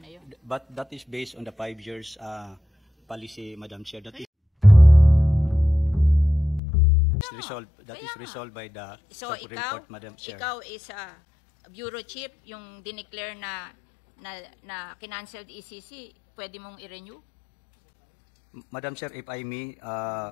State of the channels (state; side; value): drops out; right; at 6.6 s